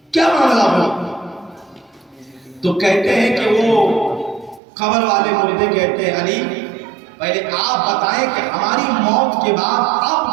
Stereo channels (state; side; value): drops out; left; at 4.6 s